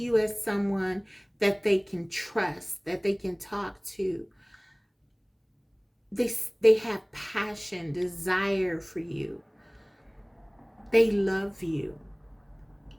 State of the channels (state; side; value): identical; both; correlation 1.00